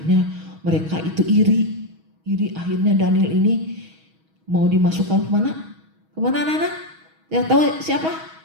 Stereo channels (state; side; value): late; left; 6.3 ms